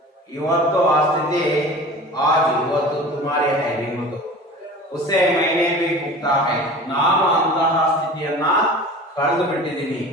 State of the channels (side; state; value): both; normal; correlation 0.39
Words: ಇವತ್ತು ಆ ಸ್ಥಿತಿ आज ಇವತ್ತು तुम्हारे है ನಿಮ್ಮದು. उसे मैंने भी भुगता है. ನಾನು ಅಂತಹ ಸ್ಥಿತಿಯನ್ನ ಕಳೆದು ಬಿಟ್ಟಿದ್ದೀನಿ